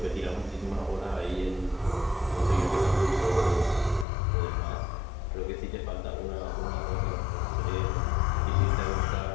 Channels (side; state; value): right; drops out; at 4.0 s